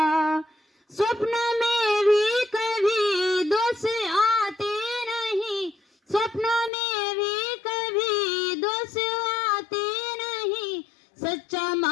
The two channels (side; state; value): right; drops out; at 6.7 s